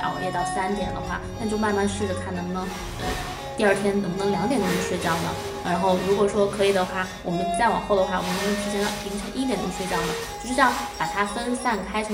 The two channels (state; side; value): identical; both; correlation 1.00